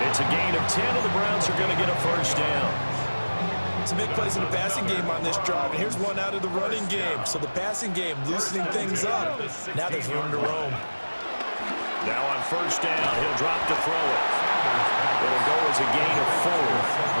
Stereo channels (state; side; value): inverted; both; correlation -1.00